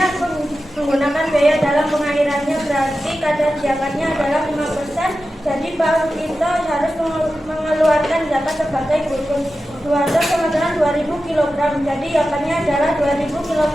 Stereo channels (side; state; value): both; normal; correlation 0.92